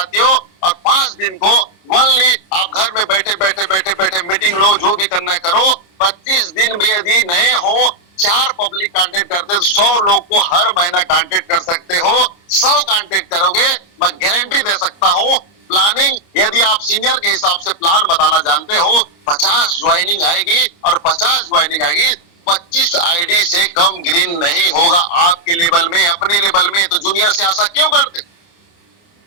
और 5 दिन को ओनली आप घर में बैठे बैठे मीटिंग लो, जो भी करना है करो। 25 दिन भी यदि नए हो, 4 पब्लिक कांटेक्ट करते तो 100 लोग को हर महीना कांटेक्ट कर सकते हो। 100 कांटेक्ट करोगे, मैं गारंटी दे सकता हूं। प्लानिंग यदि आप सीनियर के हिसाब से प्लान बताना जानते हो, 50 ज्वाइनिंग आएगी, और 50 ज्वाइनिंग आएगी, 25 आईडी से कम ग्रीन नहीं होगा आपके लेवल में, अपने लेवल में। तो जूनियर से आशा क्यों करते?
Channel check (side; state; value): right; late; 29 ms